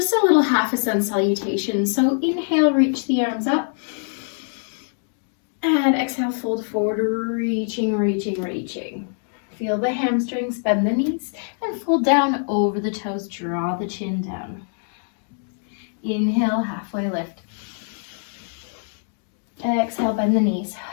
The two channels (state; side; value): silent; right; 63 dB below the other